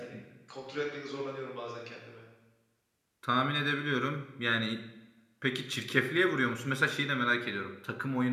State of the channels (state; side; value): identical; both; correlation 1.00